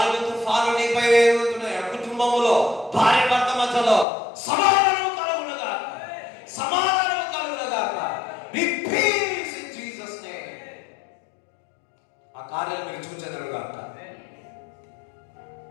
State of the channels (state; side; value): drops out; right; at 4.0 s